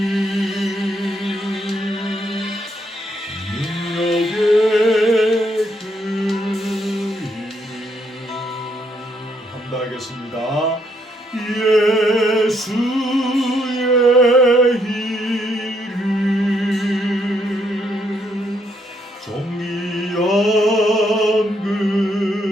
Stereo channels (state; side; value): normal; both; correlation 0.73